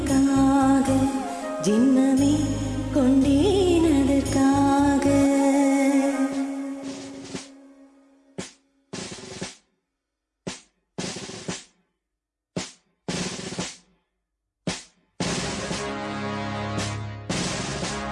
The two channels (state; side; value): identical; both; correlation 1.00